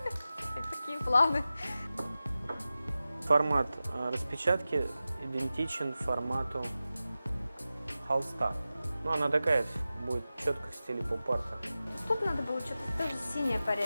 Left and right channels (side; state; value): both; inverted; correlation -0.94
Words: Такие планы. Формат распечатки идентичен формату холста. Она такая будет четко в стиле поп-арта. Тут надо было что-то тоже синее